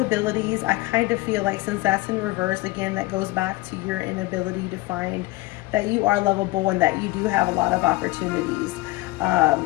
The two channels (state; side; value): quieter; right; 20.6 dB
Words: I kind of feel like, since that's in reverse, again, that goes back to your inability to find that you are lovable and that you do have a lot of opportunities.